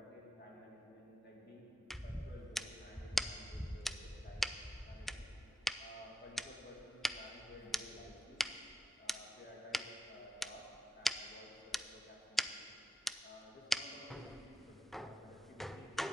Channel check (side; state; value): both; normal; correlation 0.86